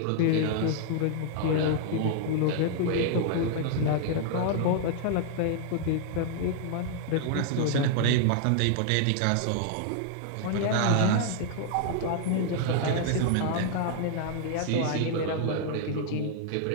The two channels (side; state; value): both; different; correlation -0.01